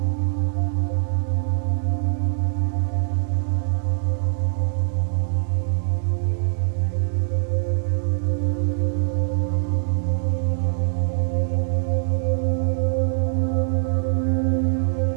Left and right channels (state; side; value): silent; left; digital silence